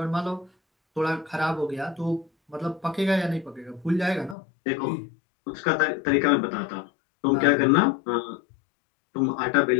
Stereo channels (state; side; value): drops out; right; at 4.4 s